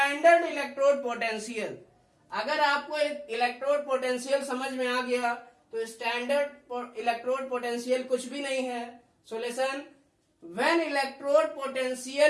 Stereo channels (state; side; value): identical; both; correlation 1.00